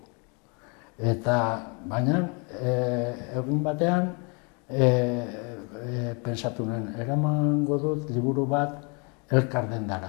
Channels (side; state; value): right; quieter; 33.7 dB